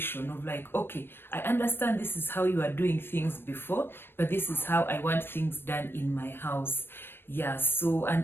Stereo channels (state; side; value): late; right; 0.10 ms